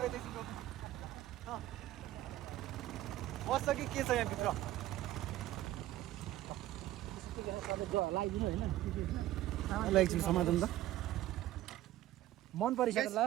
बस्छ कि के छ यहाँभित्र। एकछिन समाधान त मन परिसक्यो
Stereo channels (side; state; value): left; quieter; 14.6 dB